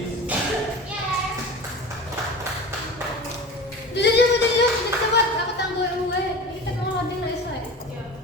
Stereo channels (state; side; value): normal; both; correlation 0.34